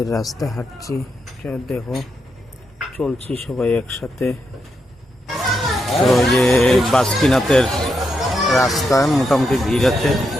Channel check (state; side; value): normal; both; correlation 0.83